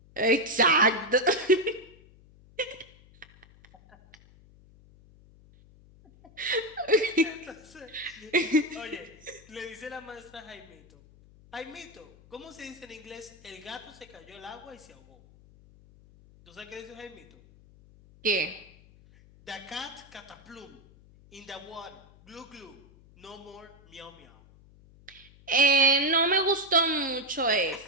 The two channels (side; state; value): left; noise; hum, 25 dB below the sound